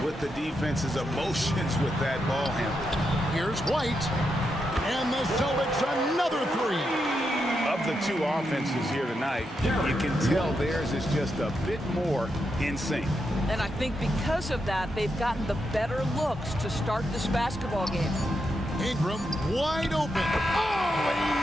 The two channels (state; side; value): normal; both; correlation 0.84